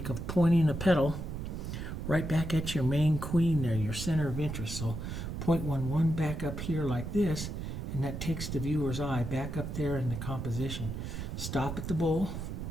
of pointing a petal right back at your main queen there, your center of interest. So point one back up here like this, and that takes the viewer's eye back up there in the composition. Stop at the bowl,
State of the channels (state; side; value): noise; right; rumble, 5 dB below the sound